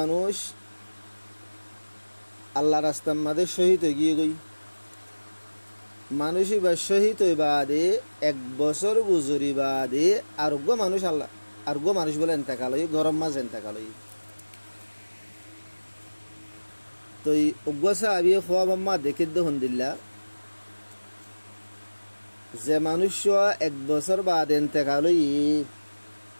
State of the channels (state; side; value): inverted; both; correlation -1.00